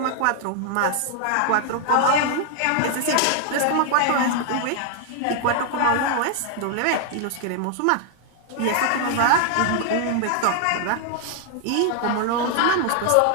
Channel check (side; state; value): both; different; correlation 0.00